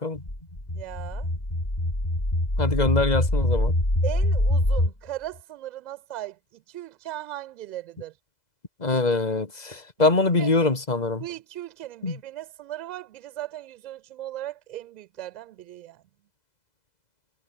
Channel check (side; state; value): right; late; 2.0 ms